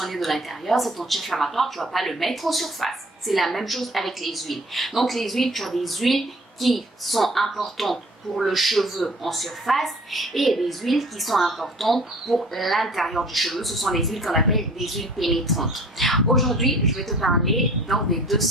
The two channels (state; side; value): normal; both; correlation 0.50